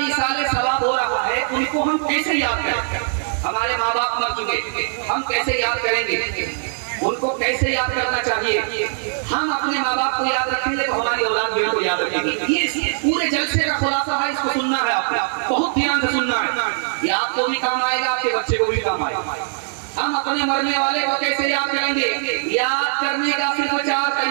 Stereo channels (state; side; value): silent; left; digital silence